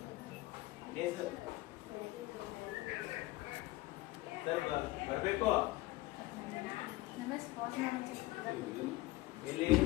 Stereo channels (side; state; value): right; quieter; 19.1 dB